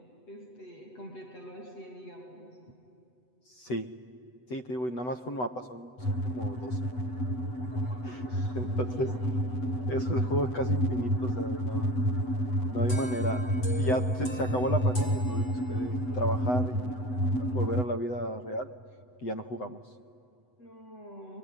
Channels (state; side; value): late; right; 8.0 ms